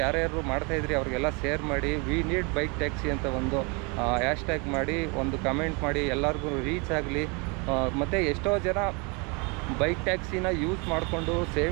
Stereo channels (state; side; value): quieter; left; 31.4 dB